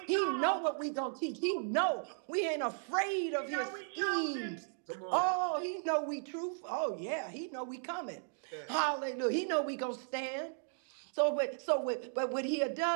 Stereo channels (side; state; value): left; silent; digital silence